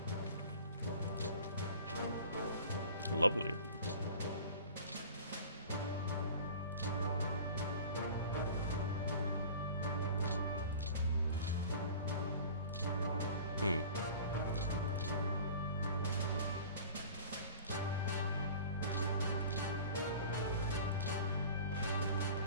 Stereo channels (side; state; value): both; inverted; correlation -0.42